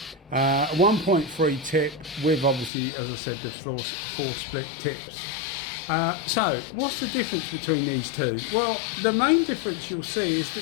1.3 tip with, obviously, as I said, the 4 split tips. So what's the difference between these two? Well, the main difference you'll see is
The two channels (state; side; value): drops out; right; at 2.7 s